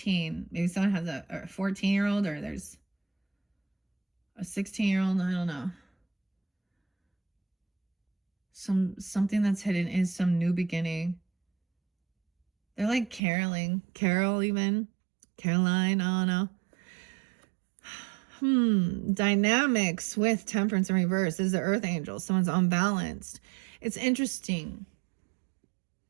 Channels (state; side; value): drops out; left; at 13.2 s